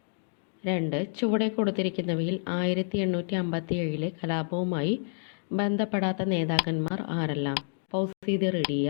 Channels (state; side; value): silent; right; digital silence